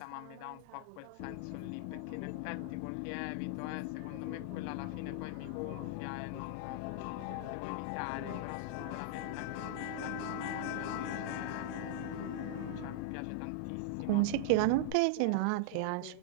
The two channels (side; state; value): both; different; correlation -0.01